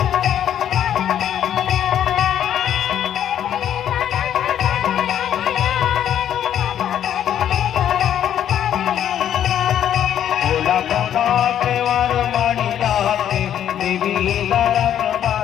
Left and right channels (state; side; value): quieter; right; 10.2 dB